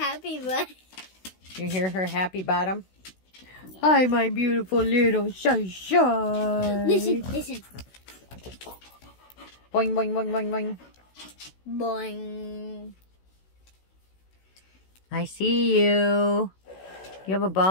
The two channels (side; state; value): right; late; 16 ms